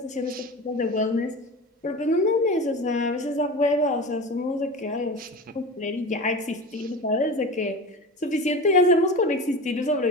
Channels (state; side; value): normal; both; correlation 0.30